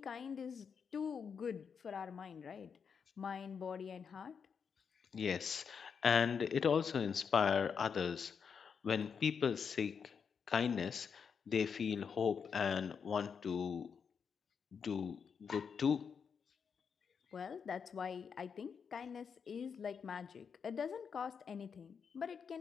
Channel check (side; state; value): right; quieter; 6.5 dB